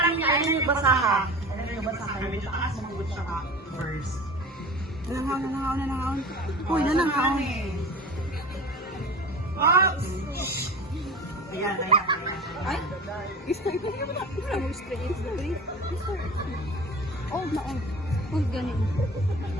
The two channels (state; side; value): normal; both; correlation 0.35